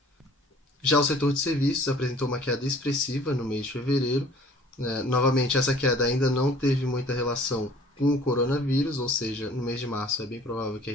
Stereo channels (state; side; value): normal; both; correlation 0.52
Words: Já o setor de serviços apresentou uma queda expressiva no mês de fevereiro. Novamente, essa queda ainda não teve muita relação com o coronavírus, ou seja, no mês de março é bem provável que